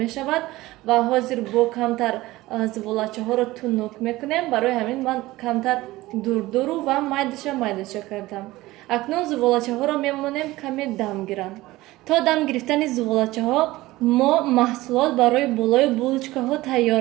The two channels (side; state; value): left; quieter; 18.3 dB